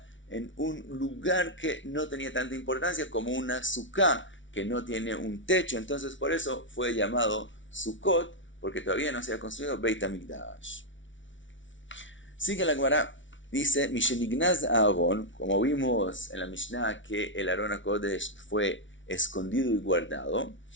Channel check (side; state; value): right; late; 0.56 ms